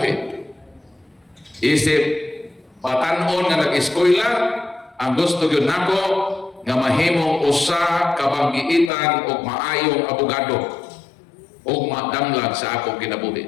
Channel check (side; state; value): right; drops out; at 8.9 s